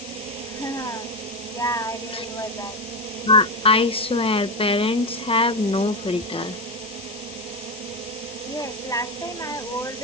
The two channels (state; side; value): noise; left; hiss, 14 dB below the sound